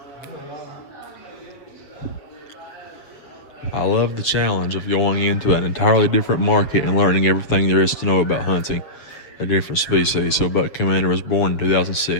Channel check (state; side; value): late; right; 7.5 ms